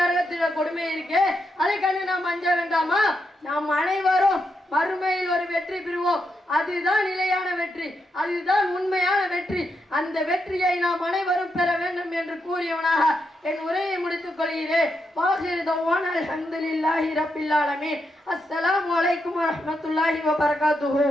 கொடுமை இருக்கு. அதை கண்டு நாம் அஞ்ச வேண்டாமா? நாம் அனைவரும் மறுமையில் ஒரு வெற்றி பெறுவோம். அதுதான் நிலையான வெற்றி, அதுதான் உண்மையான வெற்றி. அந்த வெற்றியை நாம் அனைவரும் பெற வேண்டும் என்று கூறியவனாக என் உரையை முடித்துக் கொள்கிறேன். வாஹிர் தவானா அல்ஹம்துலில்லாஹி ரப்பில் ஆலமீன். அஸ்ஸலாமு அலைக்கும் வரஹ்மத்துல்லாஹி வபரகாத்துஹு.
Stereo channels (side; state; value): both; normal; correlation 0.83